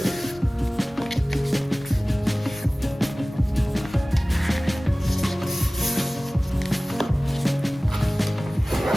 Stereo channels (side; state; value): both; normal; correlation 0.98